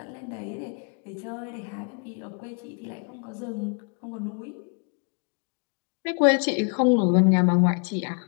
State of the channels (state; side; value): quieter; right; 39.1 dB